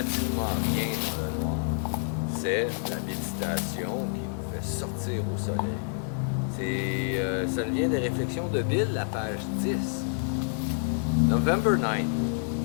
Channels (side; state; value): right; silent; 59 dB below the other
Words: rien dans le noir. C'est la méditation qui nous fait sortir au soleil. Ça vient des réflexions de Bill, la page 10. November 9th,